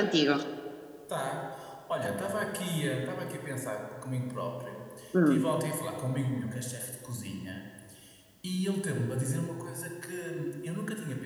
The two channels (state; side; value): identical; both; correlation 1.00